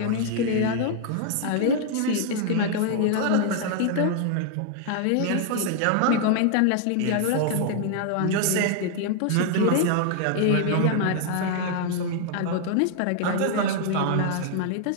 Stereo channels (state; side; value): different; both; correlation 0.00